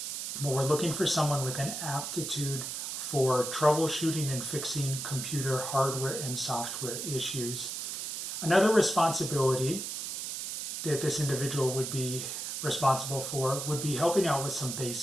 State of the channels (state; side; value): noise; right; hiss, 5 dB below the sound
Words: but we're looking for someone with an aptitude for troubleshooting and fixing computer hardware and software issues. Another responsibility that this individual would be responsible for would be helping out with some